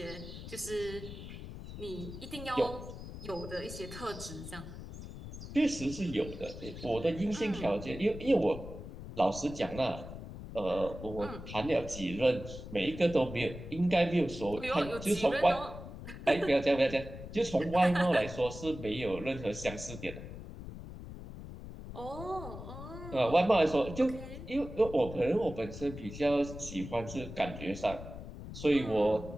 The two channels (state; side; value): noise; left; rumble, 11 dB below the sound